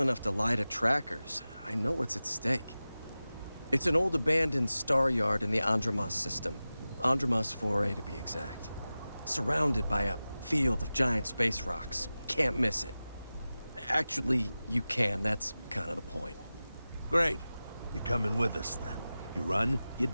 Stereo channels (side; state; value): both; inverted; correlation -0.96